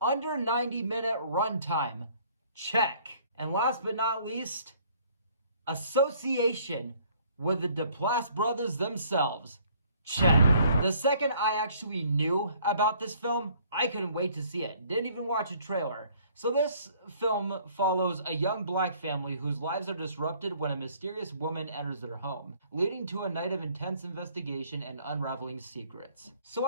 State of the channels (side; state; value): both; inverted; correlation -0.60